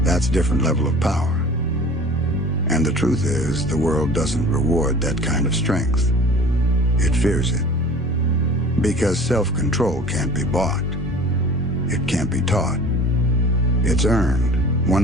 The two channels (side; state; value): both; normal; correlation 0.43